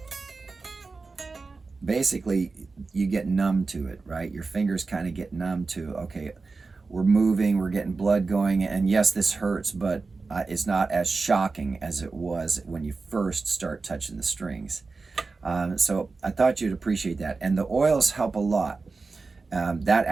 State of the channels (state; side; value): quieter; left; 4.1 dB